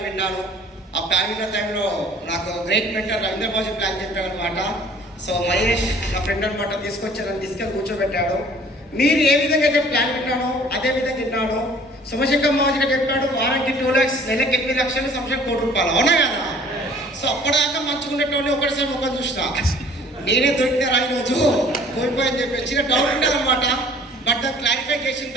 విన్నాను. ఆ ప్లాన్ విన్న టైంలో నాకు great mentor Ravindra Baji plan చెప్పాడు అనమాట. సో మహేష్ నా ఫ్రెండ్ అనమాట తీసుకొచ్చారని తీసుకెళ్ళి కూర్చోబెట్టాడు. మీరు ఏ విధంగా అయితే ప్లాన్ విన్నానో అదే విధంగా విన్నాను. సోమశేఖర్ మాజీగా చెప్పాడు వారానికి 2 lakhs, నెలకి 8 లక్షలు, సంవత్సరం 1 కోటి రూపాయలు, అవునా కదా? సో అప్పటిదాకా మంచుకునేటోళ్ళు ఒకటిసారి ముఖం చూసిన నేనే దొరికినారా ఈరోజు కోల్పోయని చెప్పి చిన్న డౌట్ ఉండదు అనమాట. బట్ దాన్ని క్లారిఫై చేసిన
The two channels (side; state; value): both; normal; correlation 0.53